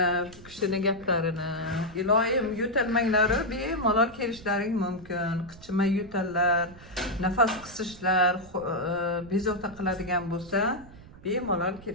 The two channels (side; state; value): right; noise; rumble, 19 dB below the sound